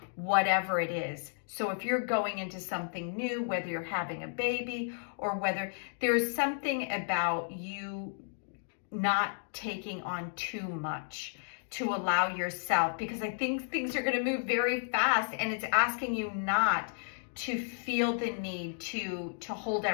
whatever it is. So if you're going into something new, whether you're having a baby or whether there's something about you not taking on too much, to allow yourself, because I think things are going to move very fast, and it's asking you not to feel the need to hold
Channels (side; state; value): right; silent; digital silence